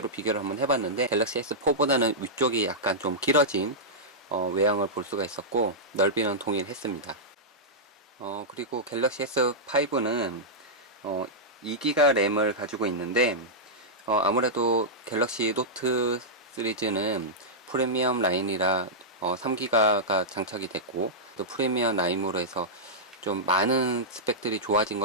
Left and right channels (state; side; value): normal; both; correlation -0.11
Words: 비교를 한번 해봤는데 갤럭시 S4보다는 위쪽이 약간 좀 길어진 외형을 볼 수가 있었고 넓이는 동일했습니다. 그리고 갤럭시 S5는 2GB 램을 가지고 있는데 아무래도 갤럭시 노트 시리즈는 프리미엄 라인이라 3GB가 장착이 됐고 또 프리미엄 라인으로 해서 좀 많은 스펙들이 좋아진